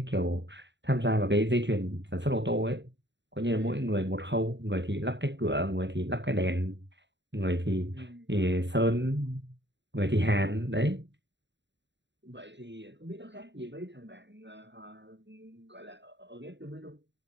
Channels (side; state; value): left; late; 0.52 ms